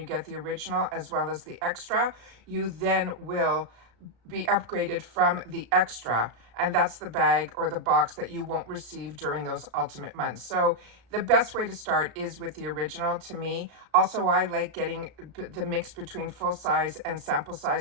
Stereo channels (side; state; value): left; late; 34 ms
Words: get the original as well as the extra, you then will be upgraded from the extra, and that's the bag or the box that you won't receive during those ultimate months. So the best way to start is with the original to me. Also, I like getting the mix between full size and sample